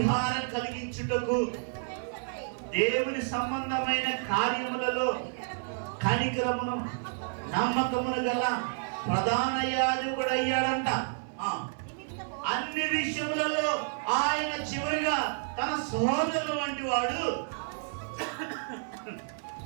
కలిగించుటకు దేవుని సంబంధమైన కార్యములలో కనికరమును నమ్మకమును గల ప్రధాన యాజకుడు అయ్యాడంట. అన్ని విషయములలో ఆయన చివరిగా తన సహోదరుల వంటి వాడు.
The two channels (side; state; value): left; silent; 58 dB below the other